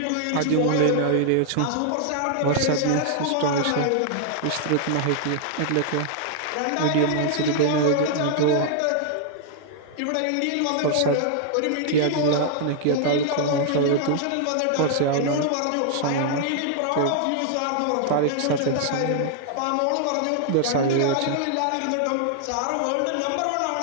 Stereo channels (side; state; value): both; different; correlation 0.00